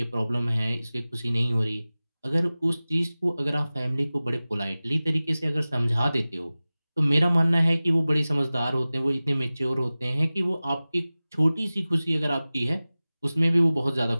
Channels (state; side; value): inverted; both; correlation -0.98